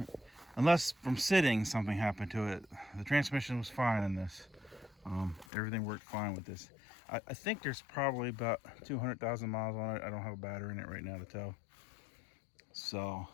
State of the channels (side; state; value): right; drops out; at 5.5 s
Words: unless from sitting something happened to it. The transmission was fine in this. Everything worked fine with this. I think there's probably about 200,000 miles on it. I don't have a battery in it right now to tell. So